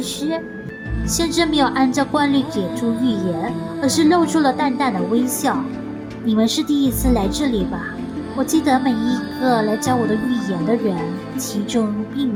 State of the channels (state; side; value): identical; both; correlation 1.00